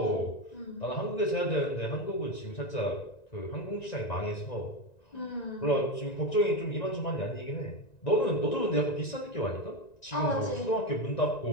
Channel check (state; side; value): late; right; 1.9 ms